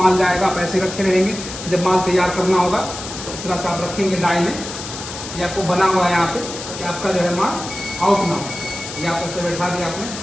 जाएगा, आप ऐसे रखे रहेंगे। जब माल तैयार करना होगा तो इस तरह से आप रखेंगे डाई में। ये आपको बना हुआ है यहाँ पे कि आपका जो है माल आउट ना हो। ये आप ऐसे बैठा दिया आपने,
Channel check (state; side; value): noise; left; hiss, 10 dB below the sound